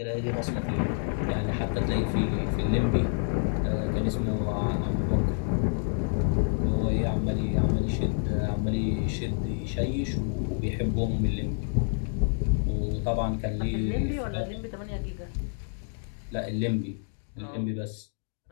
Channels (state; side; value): silent; right; 59 dB below the other